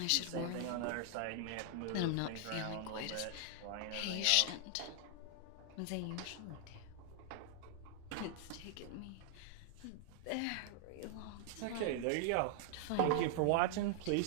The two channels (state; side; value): different; both; correlation 0.00